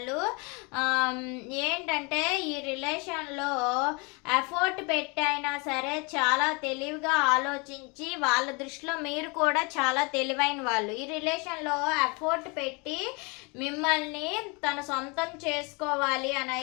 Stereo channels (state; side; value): quieter; right; 30.3 dB